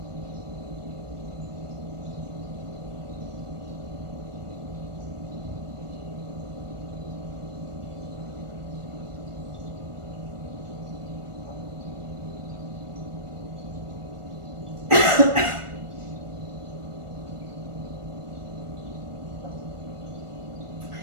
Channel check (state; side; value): late; left; 1.4 ms